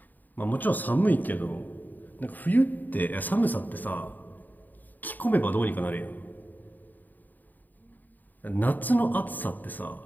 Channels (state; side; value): late; right; 0.086 ms